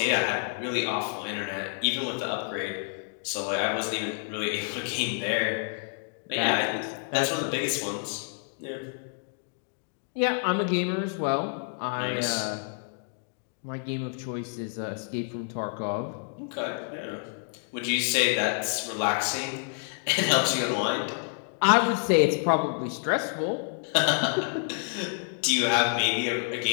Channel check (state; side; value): silent; right; 59 dB below the other